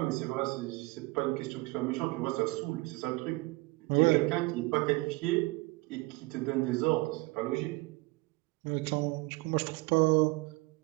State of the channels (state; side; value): quieter; left; 23.5 dB